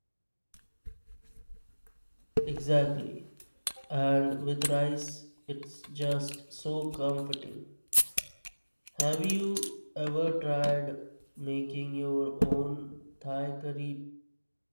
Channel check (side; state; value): both; inverted; correlation -1.00